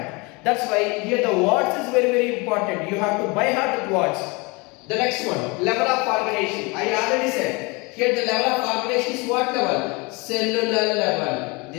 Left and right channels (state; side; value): quieter; right; 27.4 dB